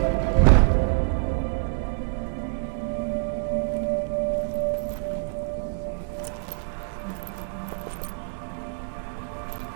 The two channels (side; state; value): left; silent; 61 dB below the other